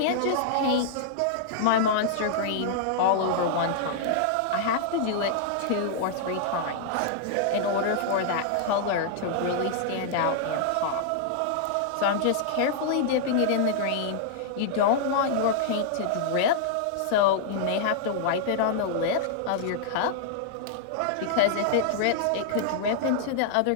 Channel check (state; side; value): different; both; correlation -0.01